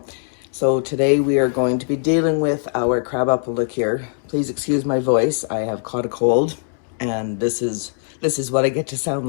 So today we are going to be dealing with our crabapple liqueur. Please excuse my voice. I have caught a cold, and this is what I get to sound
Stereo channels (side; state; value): right; silent; digital silence